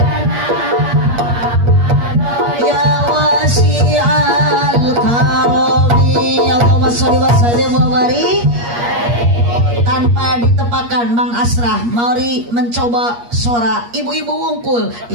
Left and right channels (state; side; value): late; left; 8.4 ms